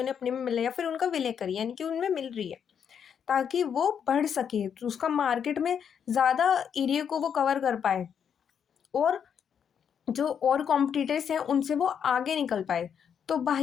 अपने में मिल रहा है या फिर उनका विलय कर रही है, यानी कि उनमें मिल रही है, ताकि वो बढ़ सके, तो उसका मार्केट में ज़्यादा एरिया को वो कवर कर पाए और जो और कॉम्पिटिटर्स हैं उनसे वो आगे निकल पाए। तो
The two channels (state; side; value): quieter; right; 7.8 dB